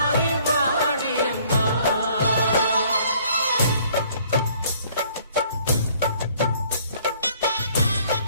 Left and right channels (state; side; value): inverted; both; correlation -0.59